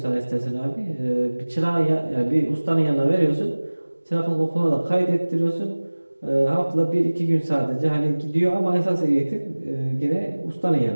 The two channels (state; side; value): inverted; both; correlation -1.00